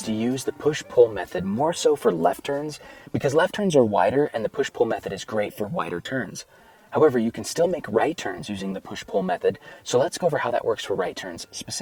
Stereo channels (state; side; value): identical; both; correlation 1.00